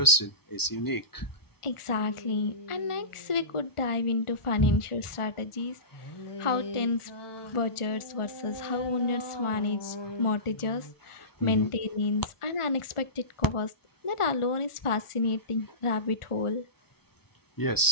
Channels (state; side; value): late; right; 1.4 ms